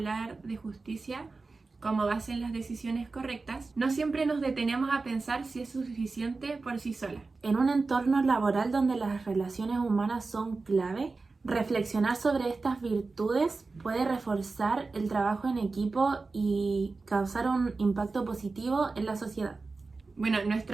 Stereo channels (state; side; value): quieter; left; 3.9 dB